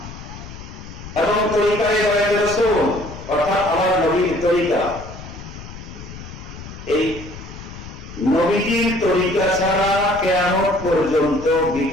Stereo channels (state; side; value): noise; left; rumble, 13 dB below the sound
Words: এবং তরিকায় বায়াত রাসূল অর্থাৎ আমার নবীর তরিকা, এই নবীর তরিকা ছাড়া কিয়ামত পর্যন্ত